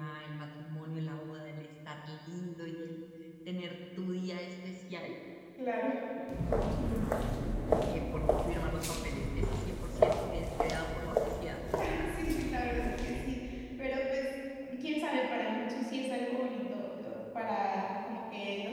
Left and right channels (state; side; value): identical; both; correlation 1.00